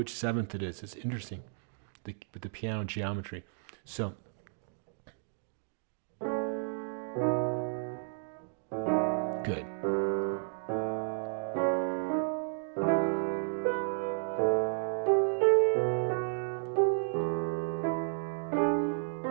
7th it is. It's interesting with the piano geometry. So good.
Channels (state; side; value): silent; left; digital silence